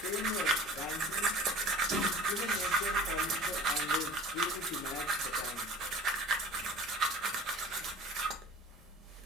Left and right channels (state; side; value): normal; both; correlation 0.43